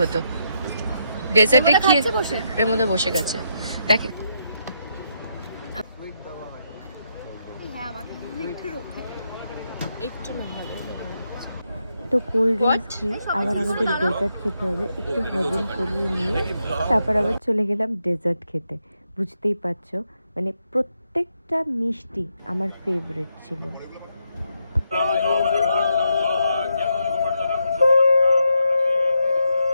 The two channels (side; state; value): both; inverted; correlation -0.81